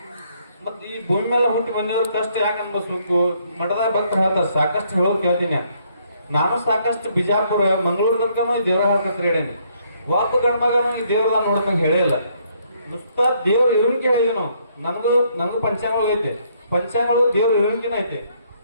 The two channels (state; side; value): inverted; both; correlation -0.69